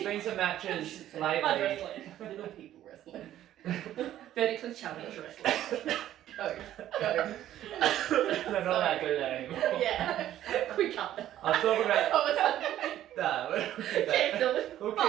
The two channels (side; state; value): left; quieter; 12.4 dB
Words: been some matches lately. Little people wrestling. Vertically challenged wrestling. Go. They're not that good anymore. Quick cut. I'll talk about. We'll